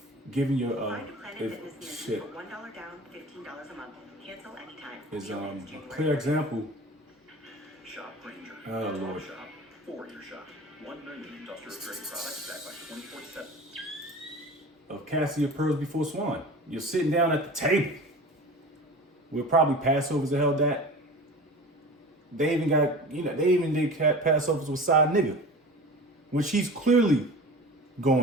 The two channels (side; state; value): both; normal; correlation 0.37